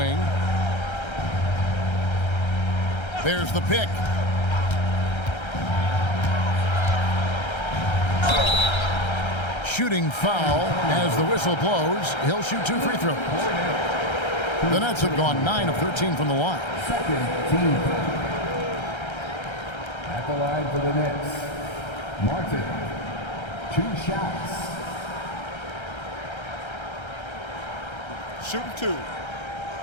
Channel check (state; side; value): late; right; 1.3 ms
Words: There's the pick. Shooting foul as the whistle blows. He'll shoot 2 free throws. The Nets have gone 9 of 13 from the line. Second team. At the line for the Nets, Martin. 2 shots. Shooting 2.